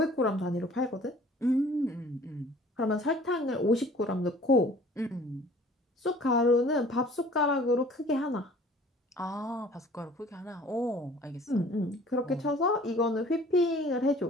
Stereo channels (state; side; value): normal; both; correlation 0.50